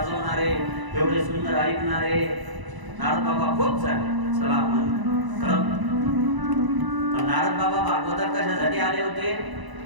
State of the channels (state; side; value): late; left; 1.0 ms